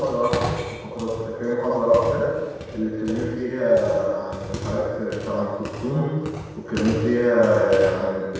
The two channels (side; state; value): both; identical; correlation 1.00